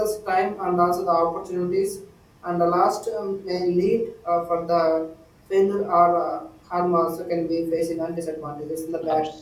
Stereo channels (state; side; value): identical; both; correlation 1.00